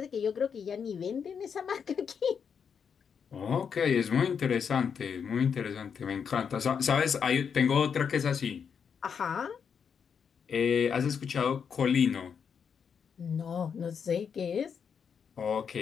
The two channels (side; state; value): right; quieter; 6.9 dB